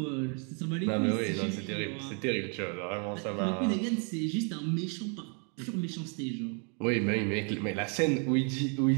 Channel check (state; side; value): quieter; left; 38.8 dB